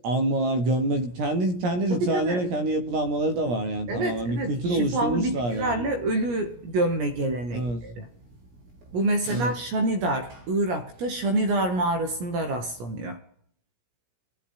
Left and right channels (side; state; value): left; late; 17 ms